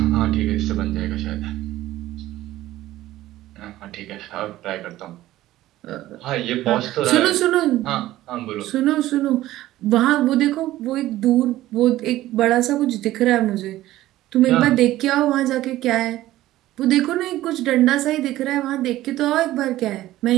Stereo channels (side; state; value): left; quieter; 15.4 dB